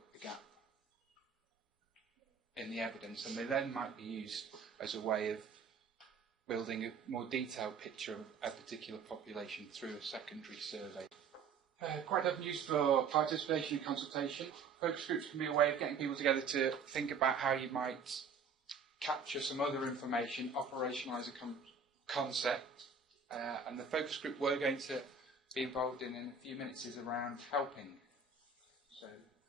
the gap in the evidence, and they then might be used as a way of building a more detailed picture of a particular population through a secondary survey. Quite often used for participation and consultation. Focus groups can be a way of getting people together to think about how you might capture some other information, operationalise a concept, and the focus group we're going to be involved in a few minutes is around helping. So,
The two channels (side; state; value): left; quieter; 5.2 dB